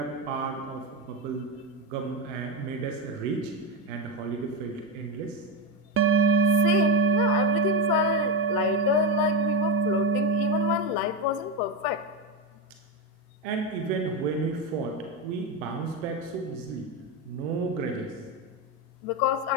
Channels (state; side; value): normal; both; correlation 0.12